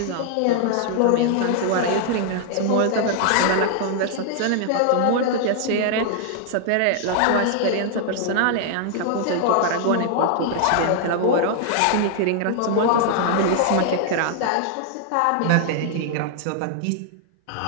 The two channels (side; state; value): both; different; correlation -0.01